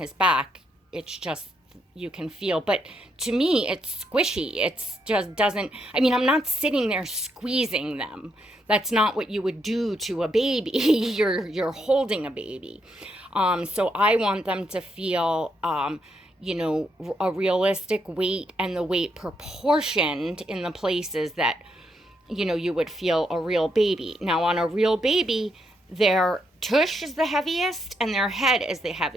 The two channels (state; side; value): normal; both; correlation 0.78